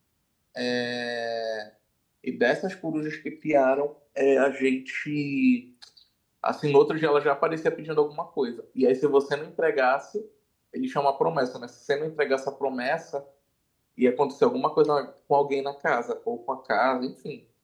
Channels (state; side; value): identical; both; correlation 1.00